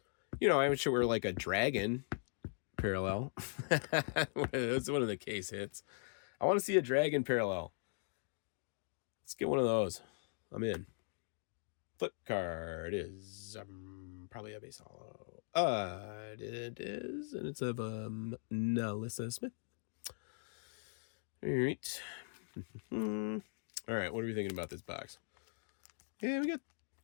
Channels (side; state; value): right; silent; digital silence